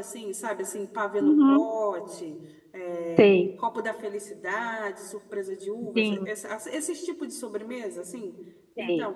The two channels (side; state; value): both; identical; correlation 1.00